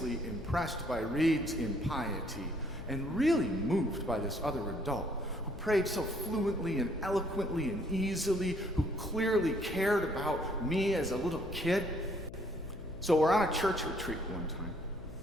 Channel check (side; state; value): left; noise; hum, 14 dB below the sound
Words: impressed by Reed's impiety and really moved by this other adult who prayed so fluently and eloquently and easily, who clearly cared about me as a little kid. So we're on a church retreat one time,